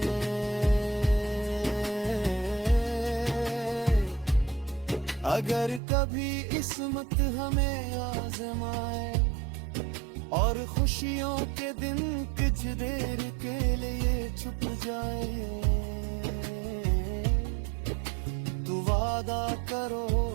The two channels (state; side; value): drops out; left; at 5.8 s